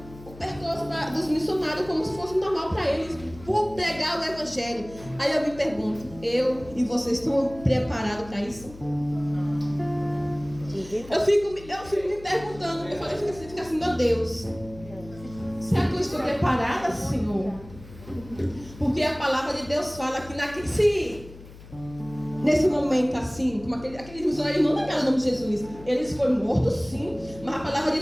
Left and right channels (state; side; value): noise; left; hum, 18 dB below the sound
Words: o percurso dos missionários como se fosse normal para eles, por pregar o evangelho. Aí eu me pergunto, eu e vocês estão preparados para isso? Eu fico me perguntando, eu falei, fica assim, meu Deus, será que eu estou preparada, Senhor? Porque a palavra de Deus fala que nesse momento assim, como aqueles missionários não negaram o nome de Jesus, eles foram mortos sim, mas a palavra de